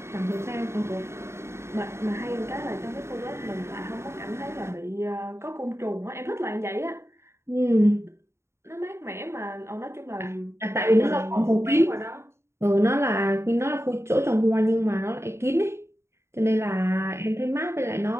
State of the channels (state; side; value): late; left; 0.13 ms